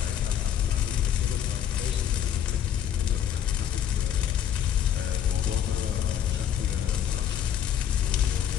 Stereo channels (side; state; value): right; quieter; 9.6 dB